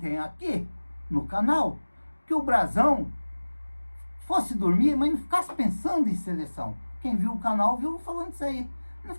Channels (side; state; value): both; inverted; correlation -1.00